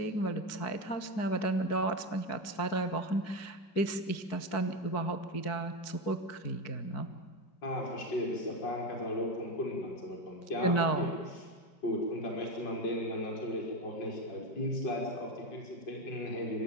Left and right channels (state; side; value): late; right; 4.7 ms